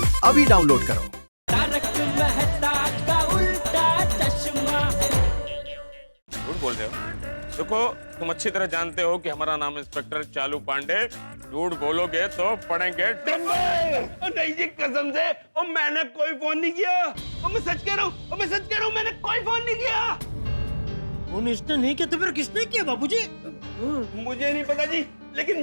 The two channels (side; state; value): both; inverted; correlation -1.00